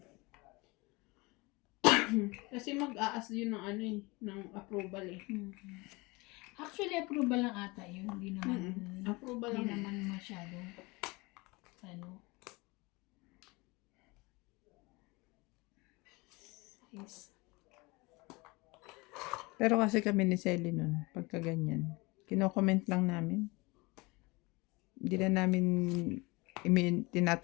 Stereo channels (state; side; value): quieter; right; 24.7 dB